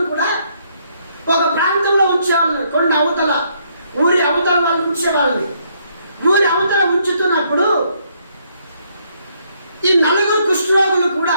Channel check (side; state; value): both; inverted; correlation -0.71